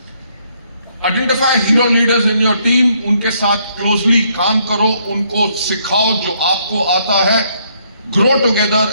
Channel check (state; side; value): inverted; both; correlation -0.70